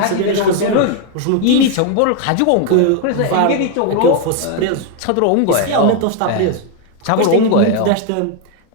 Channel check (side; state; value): both; different; correlation 0.01